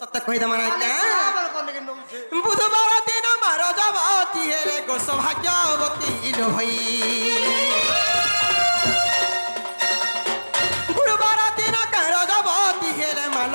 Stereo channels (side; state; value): both; inverted; correlation -1.00